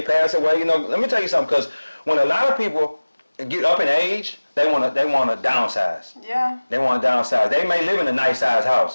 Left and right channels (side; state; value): both; inverted; correlation -1.00